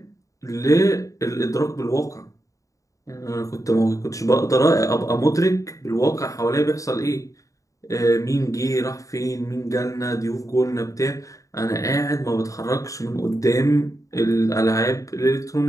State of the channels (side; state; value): right; late; 0.16 ms